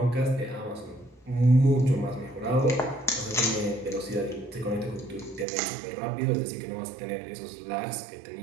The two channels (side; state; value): left; drops out; at 5.5 s